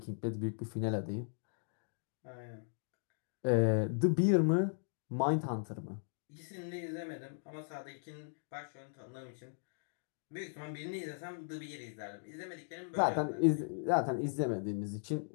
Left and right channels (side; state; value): right; silent; digital silence